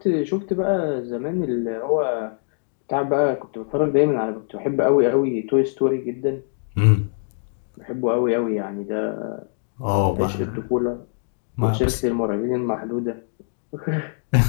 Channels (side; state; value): right; silent; digital silence